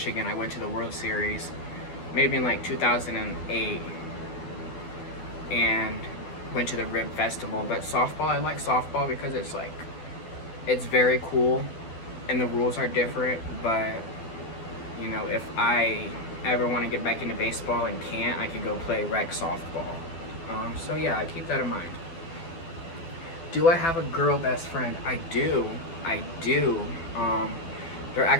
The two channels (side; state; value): right; late; 12 ms